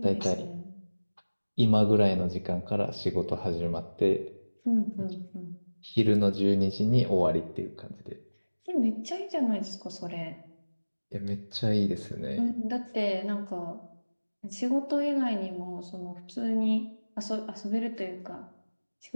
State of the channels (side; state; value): both; inverted; correlation -1.00